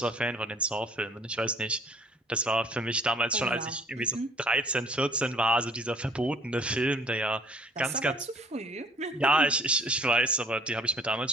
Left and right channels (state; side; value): normal; both; correlation 0.55